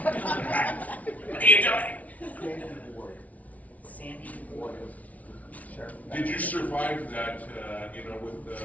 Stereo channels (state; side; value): late; right; 0.070 ms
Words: what are you doing? Sandy Ward. Did you survive that, with